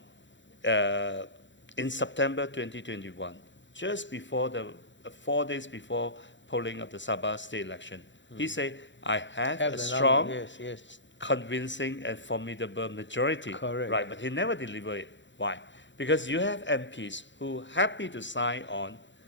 in September 2021, just before 4 days before polling of the Sabah state election. He said, I have a strong, yes. convincing and formidable majority. Correct. Right, but he never delivered it. Why? Because you have MPs who are happy to sign on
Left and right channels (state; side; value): late; right; 0.54 ms